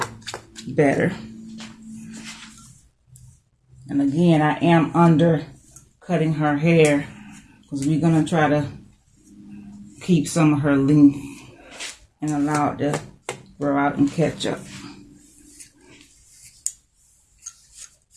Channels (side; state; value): both; identical; correlation 1.00